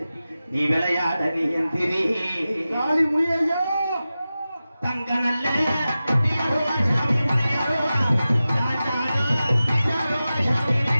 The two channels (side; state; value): both; inverted; correlation -0.95